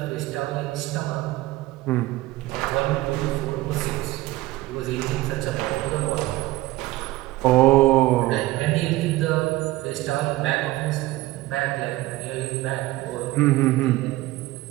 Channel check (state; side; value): quieter; left; 17.9 dB